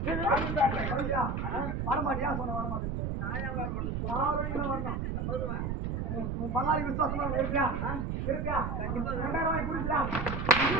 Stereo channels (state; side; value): noise; right; rumble, 1 dB below the sound